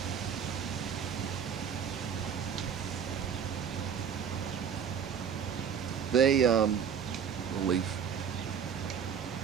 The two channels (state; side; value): quieter; left; 7.6 dB